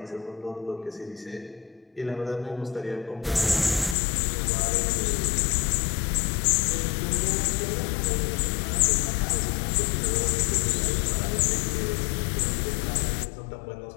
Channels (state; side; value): drops out; right; at 4.0 s